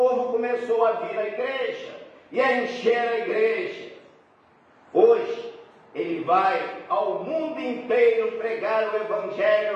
começou a vir à igreja e a encher a igreja. Hoje, ele vai ao mundo inteiro pregar o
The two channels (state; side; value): identical; both; correlation 1.00